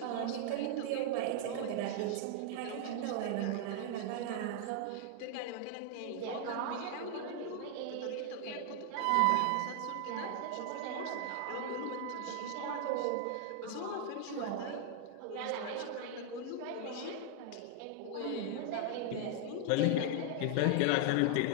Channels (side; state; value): both; different; correlation 0.00